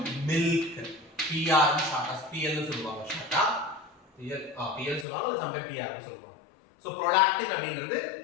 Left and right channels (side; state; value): right; drops out; at 5.1 s